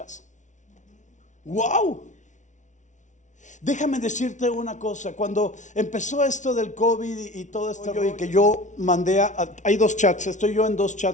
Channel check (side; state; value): right; late; 0.36 ms